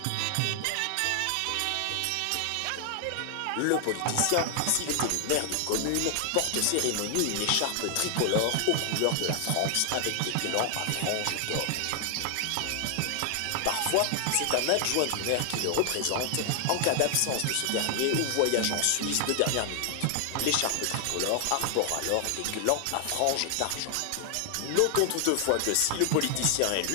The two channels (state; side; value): different; both; correlation 0.00